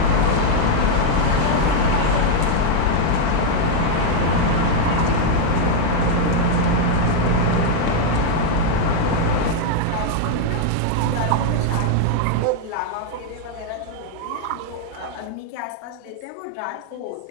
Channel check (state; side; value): different; both; correlation 0.00